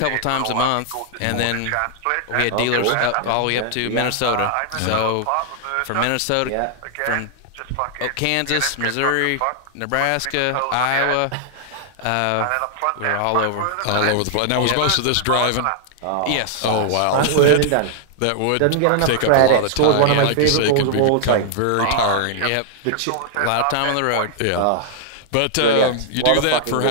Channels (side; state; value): both; different; correlation -0.01